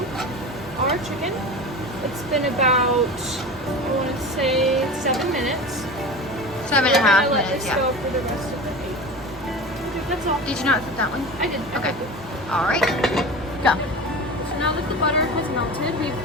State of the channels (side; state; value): both; normal; correlation 0.31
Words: our chicken. It's been about, I want to say 7 minutes. 7.5 We're gonna let minutes, this yeah. go for the rest of the day. Okay, that's all. Did you not flip that one? I did. I Okay. cooked it. All right. Go. So now that the butter has melted, we've